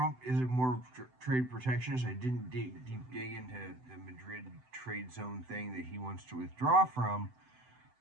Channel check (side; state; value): left; late; 7.9 ms